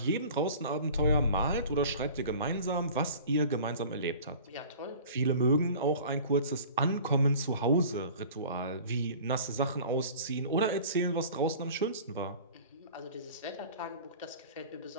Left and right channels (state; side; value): inverted; both; correlation -0.43